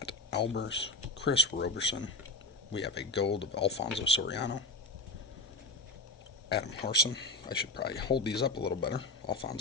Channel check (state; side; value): quieter; right; 3.2 dB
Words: Albers, Chris Roberson. We have a gold of Alfonso Soriano, Adam Harson. I should probably hold these up a little better.